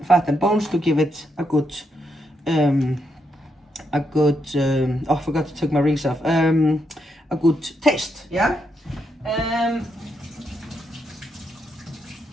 and bones to give it a good, oh, I forgot to take my rings off. A good taste, yeah?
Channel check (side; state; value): both; normal; correlation 0.80